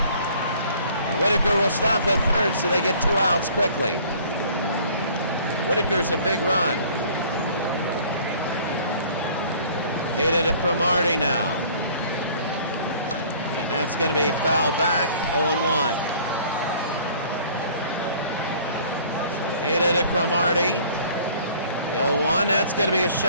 And Whitaker will stop at third, so they get 2 outs quickly. Whitaker's a big run. Hated to Cromartie now. And that's going to be fouled back, 0-1. Hated to Cromartie. 0-1, that's going to be a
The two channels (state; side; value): inverted; both; correlation -0.53